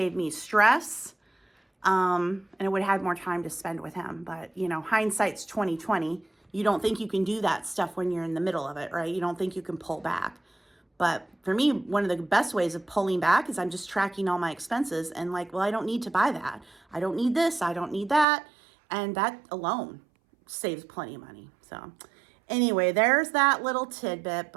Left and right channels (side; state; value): left; drops out; at 18.2 s